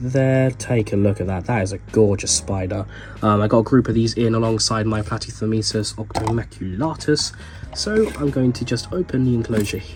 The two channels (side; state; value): both; identical; correlation 1.00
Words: Take a look at that. That is a gorgeous spider. I got a group of these in alongside my Platythermesis octomaculatus. So I'm going to just open the enclosure